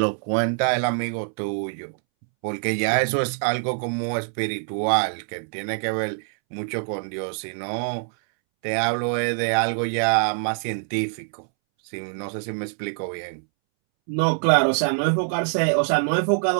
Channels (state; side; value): silent; left; 62 dB below the other